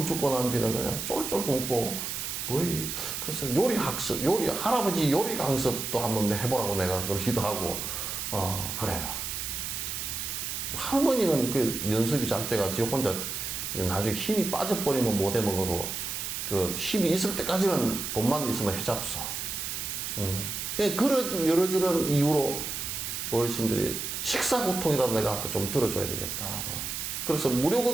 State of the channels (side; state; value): right; noise; hiss, 4 dB below the sound